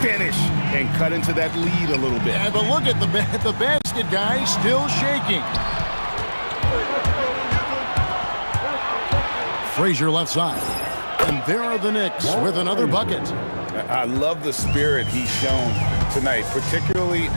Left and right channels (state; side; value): inverted; both; correlation -1.00